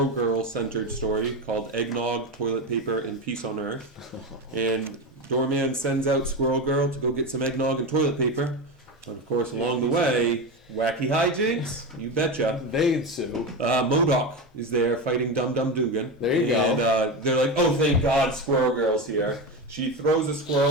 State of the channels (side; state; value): both; normal; correlation 0.18